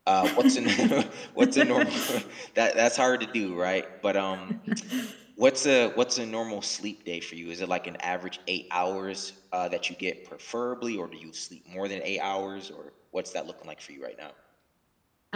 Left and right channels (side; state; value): both; identical; correlation 1.00